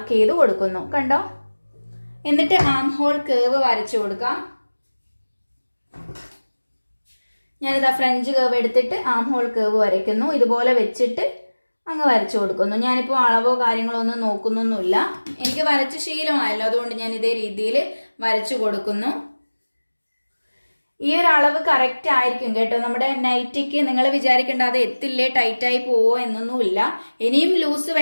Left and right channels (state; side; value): inverted; both; correlation -1.00